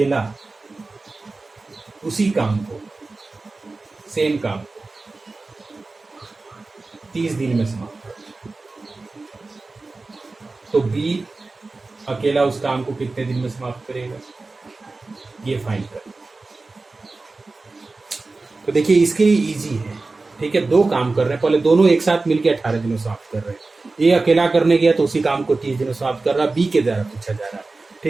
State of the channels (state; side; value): quieter; left; 3.5 dB